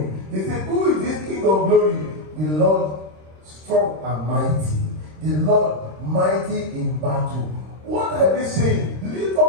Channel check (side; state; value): left; late; 26 ms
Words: They say, who is this King of glory? The Lord strong and mighty. The Lord mighty in battle. What are they saying? Lift